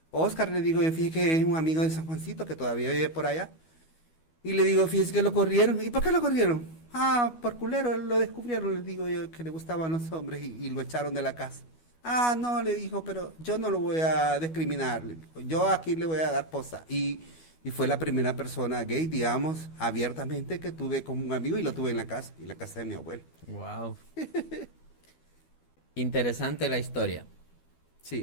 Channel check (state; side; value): late; right; 12 ms